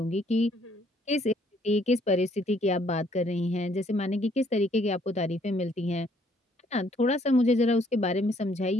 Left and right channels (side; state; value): both; normal; correlation 0.65